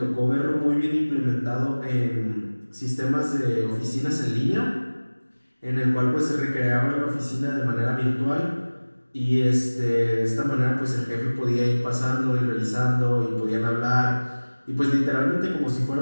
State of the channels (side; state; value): both; inverted; correlation -1.00